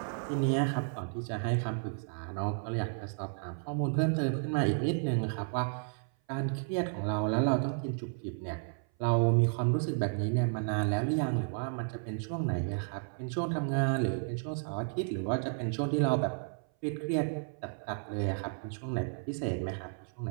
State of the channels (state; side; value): silent; left; 56 dB below the other